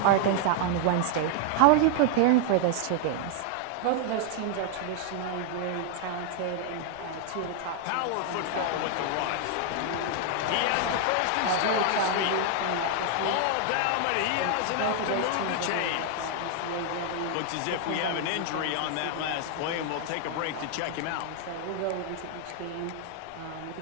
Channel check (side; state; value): both; different; correlation 0.00